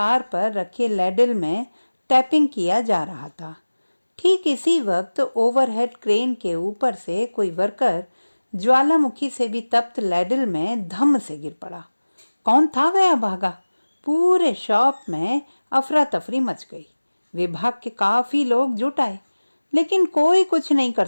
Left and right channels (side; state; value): both; inverted; correlation -1.00